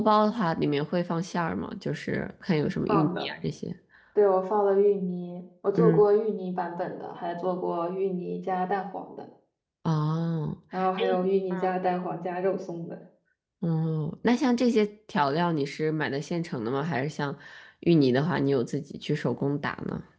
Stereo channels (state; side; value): identical; both; correlation 1.00